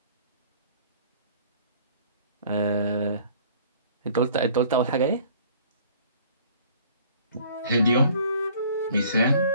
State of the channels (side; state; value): both; inverted; correlation -0.53